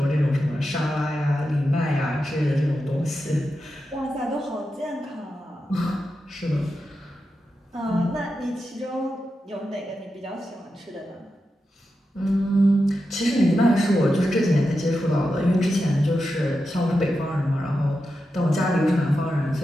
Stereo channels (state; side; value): normal; both; correlation 0.89